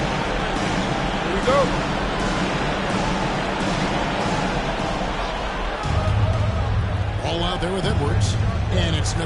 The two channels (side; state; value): both; identical; correlation 1.00